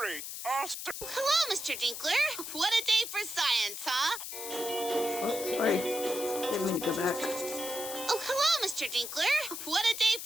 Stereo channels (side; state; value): left; noise; hiss, 7 dB below the sound